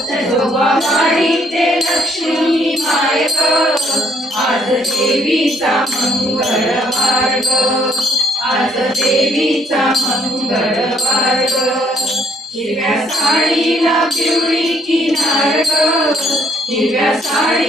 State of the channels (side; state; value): both; normal; correlation 0.69